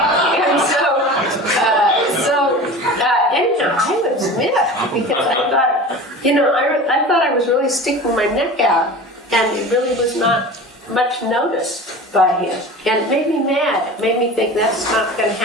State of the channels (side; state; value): both; normal; correlation 0.35